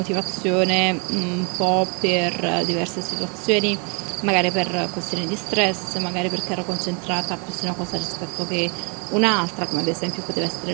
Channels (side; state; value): left; quieter; 35.4 dB